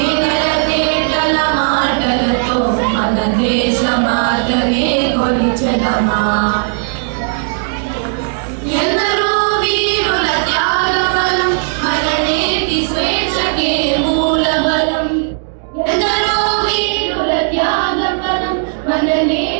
తేటల మాటలతో మన దేశమాతనే కొలిచెదమా. ఎందరో వీరుల త్యాగబలం మన నేటి స్వేచ్ఛకే మూలబలం. ఎందరో వీరుల త్యాగబలం మన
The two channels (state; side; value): silent; left; digital silence